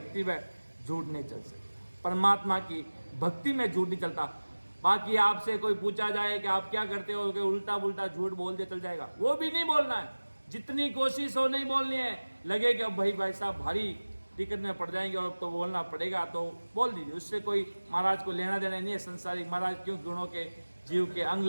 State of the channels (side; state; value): both; inverted; correlation -1.00